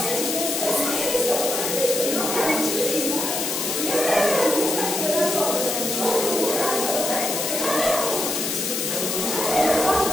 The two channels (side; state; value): left; noise; hiss, 2 dB below the sound